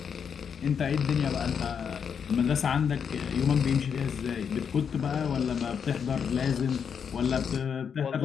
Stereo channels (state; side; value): quieter; right; 7.1 dB